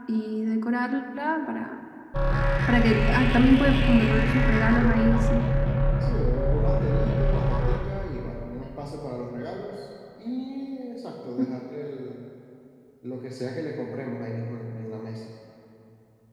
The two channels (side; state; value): both; identical; correlation 1.00